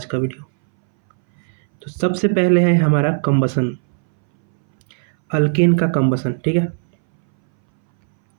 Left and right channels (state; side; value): silent; left; 64 dB below the other